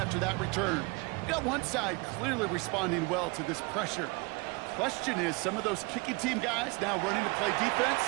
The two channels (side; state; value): left; quieter; 27.7 dB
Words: that return. We've got one side clearly responding well to this pressure. Question is, some of those kicking team guys now running to play defense,